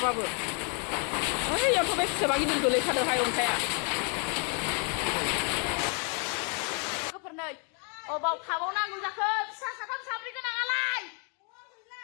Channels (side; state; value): right; quieter; 37.7 dB